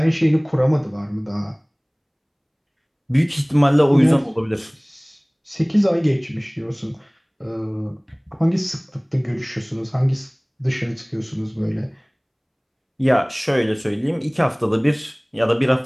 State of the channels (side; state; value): both; identical; correlation 1.00